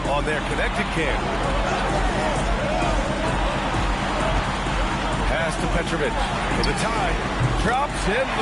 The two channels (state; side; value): identical; both; correlation 1.00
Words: on their connected cam. Pass to Petrovic for the tie. Drops in